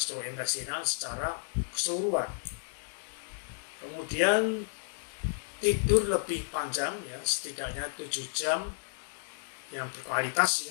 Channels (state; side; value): silent; right; digital silence